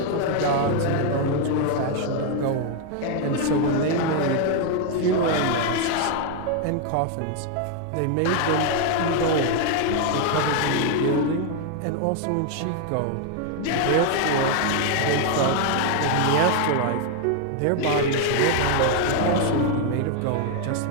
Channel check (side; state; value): both; different; correlation 0.01